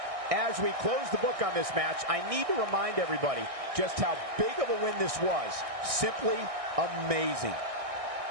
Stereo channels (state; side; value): late; left; 1.6 ms